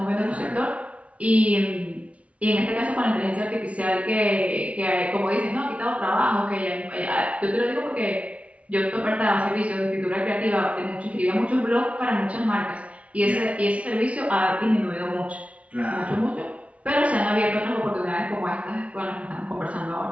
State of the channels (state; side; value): late; left; 0.064 ms